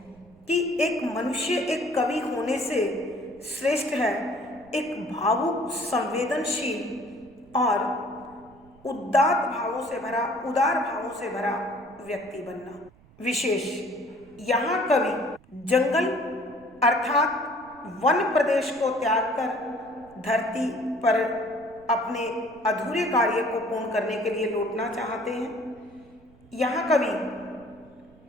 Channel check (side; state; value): right; noise; rumble, 26 dB below the sound